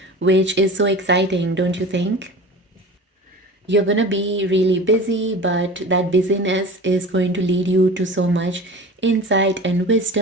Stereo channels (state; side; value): normal; both; correlation 0.36